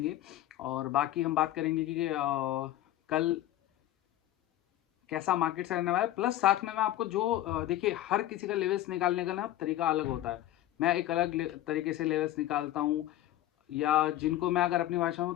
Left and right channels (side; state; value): right; quieter; 13.9 dB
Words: और बाकी हम बात करेंगे कि कल कैसा मार्केट से रहने वाला है। प्लस साथ में मैं आपको जो देखिए, हर किसी का लेवल्स निकालने का ना तरीका अलग होता है। मैं एक अलग तरीके से लेवल्स निकालता हूँ, या जिनको मैं अगर अपनी भाषा में